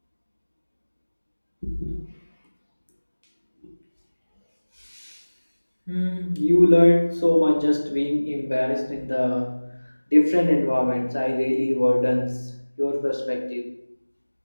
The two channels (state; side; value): inverted; both; correlation -1.00